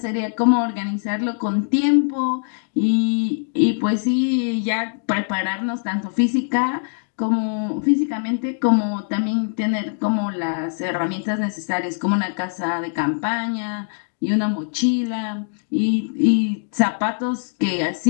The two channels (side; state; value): right; silent; digital silence